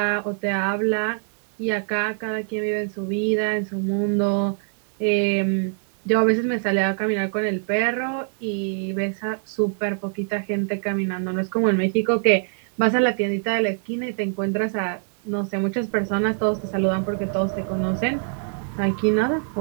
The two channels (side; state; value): left; silent; 63 dB below the other